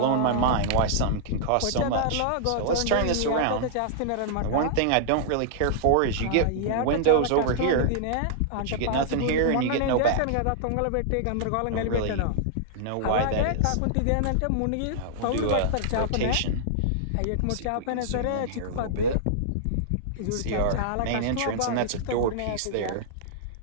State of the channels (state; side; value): different; both; correlation -0.01